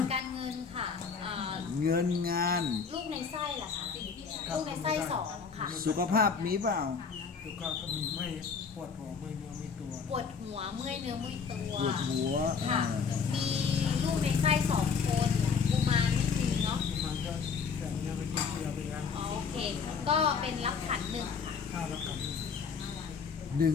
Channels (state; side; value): quieter; right; 5.8 dB